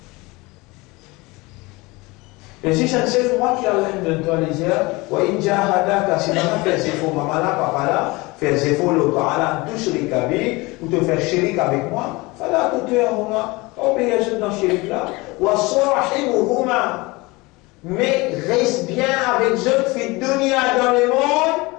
Et si c'est un moi qui a l'air de toi les yeux, ou inja hadaka, si maman fait ses faux, maman là, papa là, fait ses faux, le parla, tout chérik avec, ou te faire chérik avec moi, fala tout tu es moi, obéir dans chérik là, ou à sorahi ou huma, mais reste bien avec eux, fait dunia dans le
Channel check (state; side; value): quieter; right; 23.6 dB